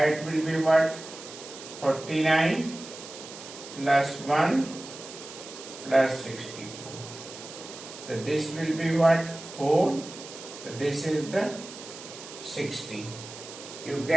will be what? 49 plus 1 plus 64. So this will be what? 4. So this is the 60. You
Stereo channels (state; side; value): noise; right; hiss, 14 dB below the sound